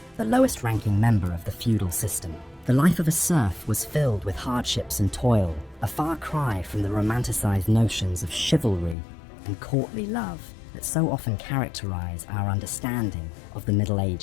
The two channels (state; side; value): drops out; right; at 9.0 s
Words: the lowest ranking member of the feudal system. The life of a serf was filled with hardships and toil, a far cry from the romanticized notions of chivalry and courtly love that so often characterize our understanding of the Middle